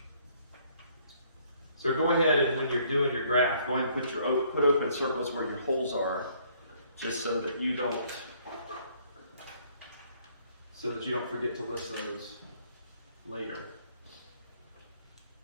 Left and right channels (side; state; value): both; inverted; correlation -0.64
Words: So go ahead and when you're doing your graph, go ahead and put open circles where your holes are, just so that you don't forget to list those later.